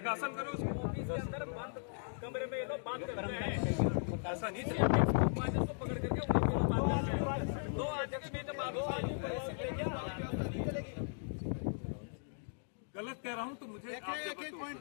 करो उसको। ऑफिस के अंदर बंद कमरे में ये लोग बात करते हैं, ऐसा नहीं चलेगा। को पकड़ करके उन्हीं के लोग बात करते हैं। 2 अध्यक्ष में तो बात नहीं चलेगी। गलत कह रहा हूँ तो मुझे आप एक पॉइंट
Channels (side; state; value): right; silent; digital silence